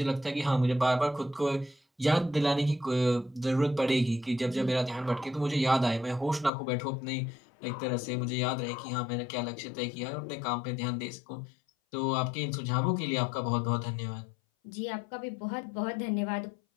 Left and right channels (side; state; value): right; drops out; at 6.5 s